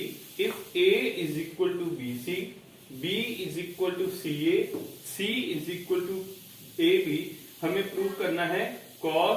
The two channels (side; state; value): both; identical; correlation 1.00